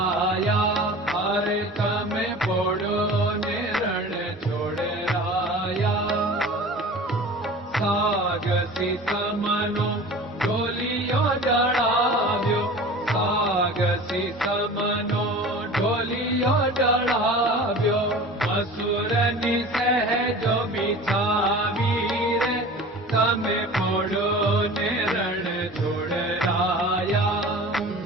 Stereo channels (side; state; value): both; normal; correlation 0.39